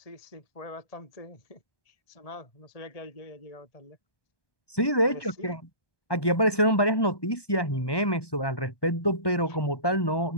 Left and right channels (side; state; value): right; late; 1.2 ms